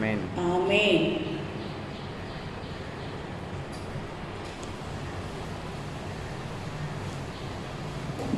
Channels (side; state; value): both; identical; correlation 1.00